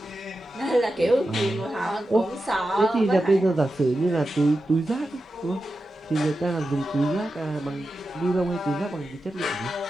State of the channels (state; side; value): normal; both; correlation 0.91